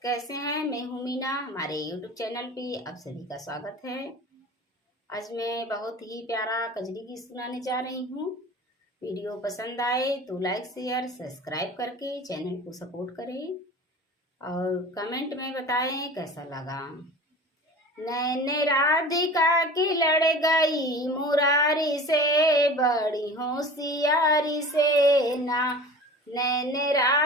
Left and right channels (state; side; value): normal; both; correlation 0.38